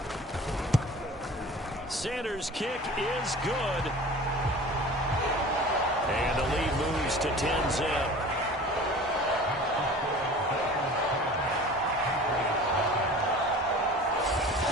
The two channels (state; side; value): normal; both; correlation 0.41